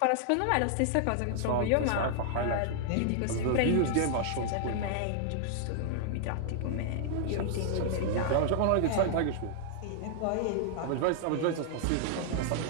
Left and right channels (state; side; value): different; both; correlation -0.01